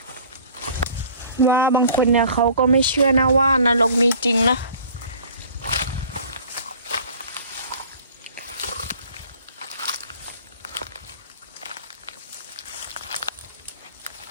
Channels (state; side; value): inverted; both; correlation -0.49